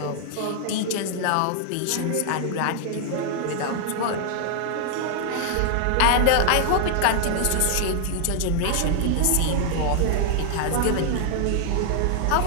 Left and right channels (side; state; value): both; different; correlation 0.00